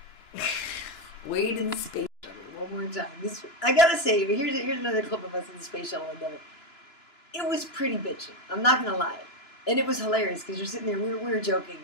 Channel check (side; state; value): right; late; 2.9 ms